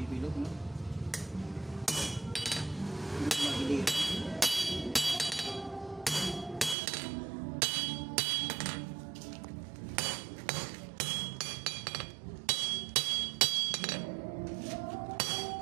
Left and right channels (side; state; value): left; drops out; at 6.8 s